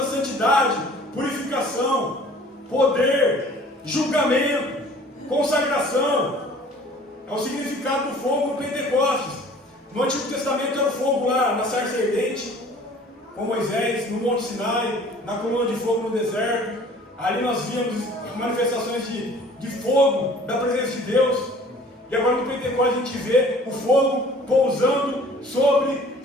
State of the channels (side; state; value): both; normal; correlation 0.50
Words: santidade, purificação, poder, julgamento, consagração. É o significado do fogo no Pentecostes. No Antigo Testamento era o fogo lá na sarça ardente, com Moisés, no Monte Sinai, na coluna de fogo no deserto. Ali nós víamos manifestações de fogo, da presença de Deus. E agora no Pentecostes a gente vê o fogo pousando sobre